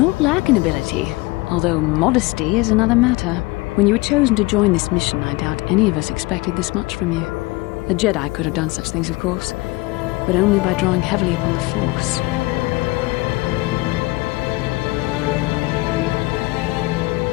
lack an ability, although modesty is another matter. When you were chosen to join this mission, I doubt any of us expected this much from you. A Jedi could have done such things, of course, but only by drawing heavily upon the Force.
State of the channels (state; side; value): quieter; right; 22.1 dB